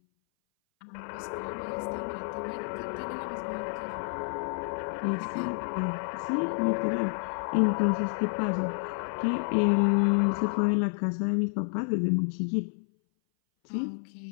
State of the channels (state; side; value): silent; right; 58 dB below the other